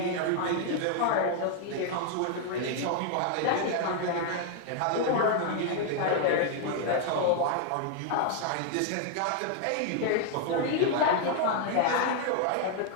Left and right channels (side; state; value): both; different; correlation 0.00